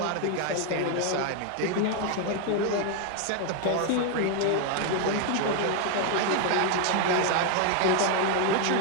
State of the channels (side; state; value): both; different; correlation 0.01